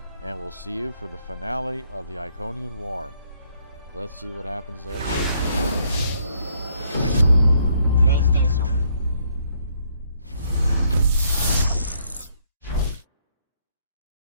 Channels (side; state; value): both; inverted; correlation -0.69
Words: and we'll see you for the finale of the Iconian War. Let's see what happens there.